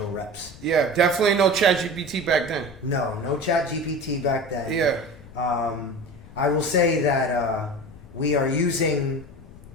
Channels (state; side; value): noise; left; rumble, 19 dB below the sound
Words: reps. Yeah, definitely no ChatGPT back then. No chat GPT back then. Yeah. I will say that we are using